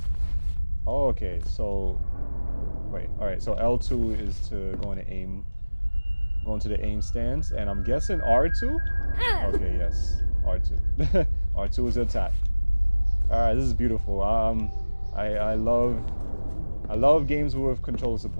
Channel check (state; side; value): inverted; both; correlation -1.00